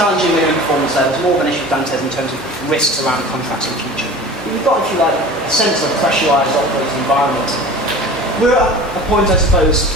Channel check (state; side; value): normal; both; correlation 0.39